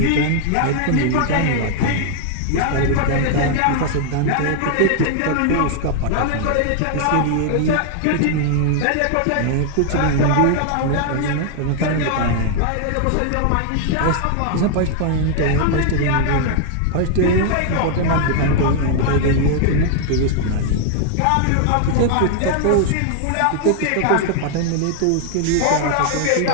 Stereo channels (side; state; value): both; different; correlation 0.00